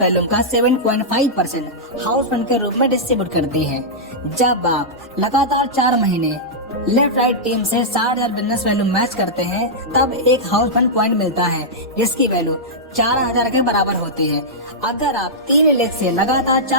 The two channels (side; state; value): both; normal; correlation -0.10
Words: वैल्यूम का 7.5% हाउस फंड के रूप में डिस्ट्रीब्यूट करती है। जब आप लगातार 4 महीने लेफ्ट राइट टीम से 60,000 बिजनेस वैल्यू मैच करते हैं तब एक हाउस फंड पॉइंट मिलता है, जिसकी वैल्यू 4,000 के बराबर होती है। अगर आप 3 लेग से लगातार